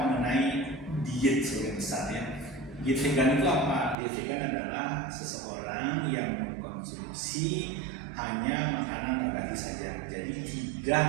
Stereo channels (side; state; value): left; drops out; at 4.0 s